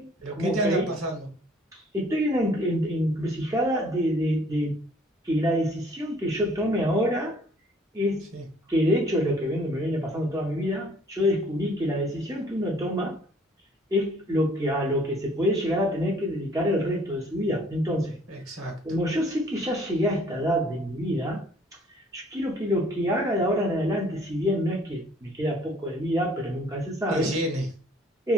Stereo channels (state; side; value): normal; both; correlation 0.58